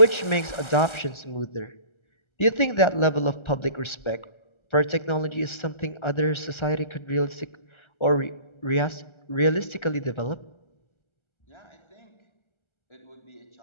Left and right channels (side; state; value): right; late; 1.3 ms